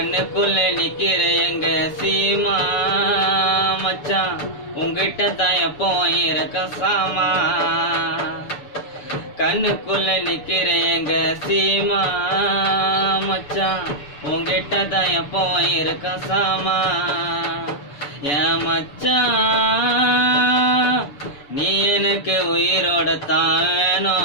நிக்கிற எங்க சீமா மச்சான், உங்கிட்ட தான் எப்போ இருக்க சாமா. கண்ணுக்குள்ள நிக்கிற எங்க சீமா மச்சான், உங்கிட்ட தான் எப்போ இருக்க சாமா. என் மச்சான் நீ எனக்கு உயிரோட தான்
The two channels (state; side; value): late; right; 6.9 ms